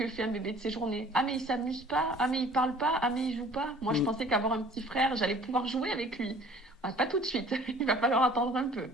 fait un bébé de ses journées. Ah, mais il s'amuse pas. Ah, mais il parle pas. Ah, mais il joue pas. Moi, je pensais qu'avoir un petit frère, j'allais pouvoir jouer avec lui. Pas tout de suite, il va falloir attendre un peu.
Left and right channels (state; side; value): normal; both; correlation 0.50